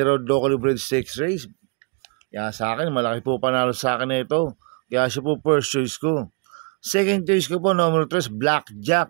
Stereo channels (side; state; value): left; quieter; 34.2 dB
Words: locally bred stakes race. Kaya sa akin, malaki po panalo sa akin na ito. Kaya siya po first choice ko. Second choice ko po, number 3,